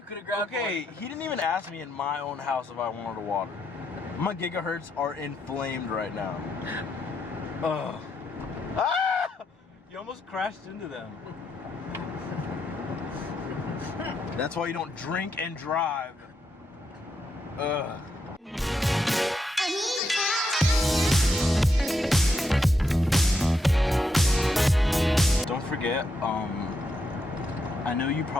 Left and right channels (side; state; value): both; normal; correlation 0.80